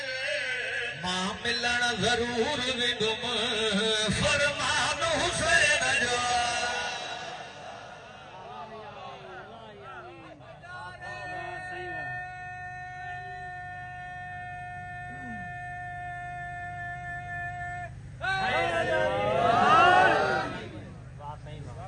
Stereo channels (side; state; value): both; identical; correlation 1.00